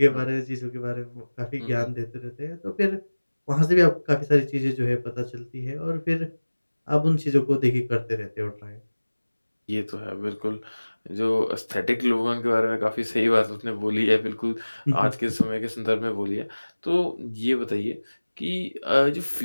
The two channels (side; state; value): both; inverted; correlation -1.00